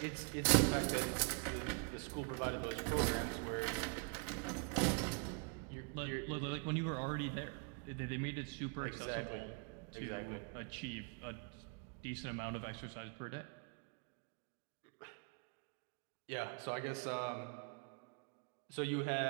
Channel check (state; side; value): quieter; left; 33.8 dB